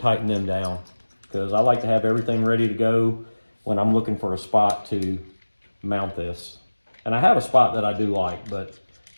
them down because I like to have everything ready to go when I'm looking for a spot to mount this. And I have a spot that I do like, but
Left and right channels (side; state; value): both; inverted; correlation -1.00